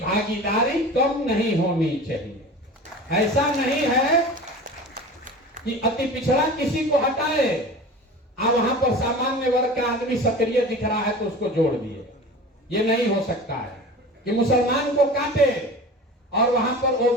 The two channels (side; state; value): both; normal; correlation 0.36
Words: कम नहीं होनी चाहिए। ऐसा नहीं है कि अति पिछड़ा किसी को हटाए, आप वहां पर सामान्य वर्ग का आदमी सक्रिय दिख रहा है तो उसको जोड़ दिए। ये नहीं हो सकता है कि मुसलमान को काटे और वहां पर